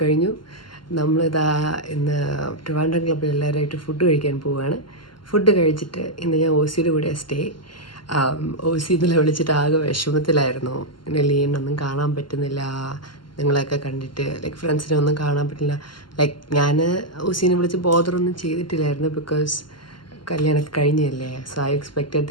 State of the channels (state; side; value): late; right; 0.72 ms